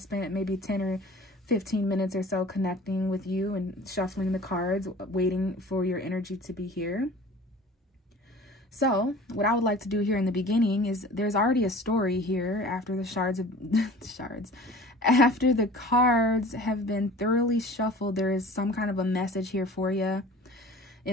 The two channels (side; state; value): both; normal; correlation 0.44